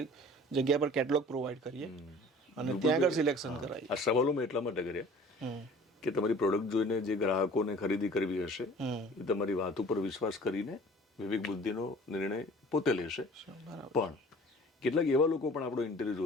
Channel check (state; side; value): normal; both; correlation 0.47